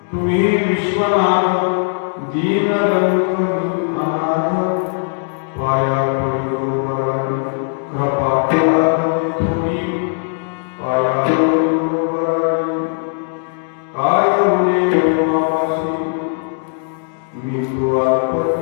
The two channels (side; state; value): right; silent; digital silence